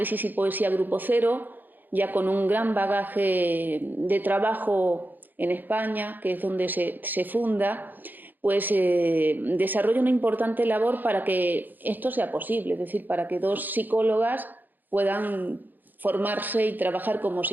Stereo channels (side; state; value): left; late; 0.088 ms